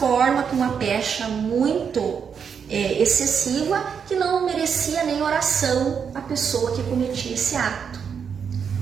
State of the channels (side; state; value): left; quieter; 6.9 dB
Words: com uma pecha muito excessiva, que não merecia nem oração a pessoa que cometia esse ato.